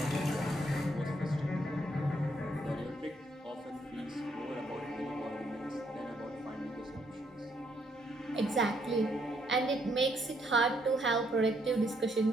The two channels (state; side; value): normal; both; correlation 0.72